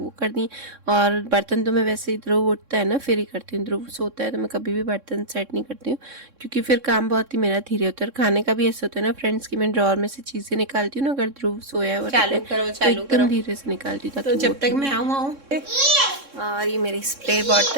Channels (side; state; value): left; late; 3.6 ms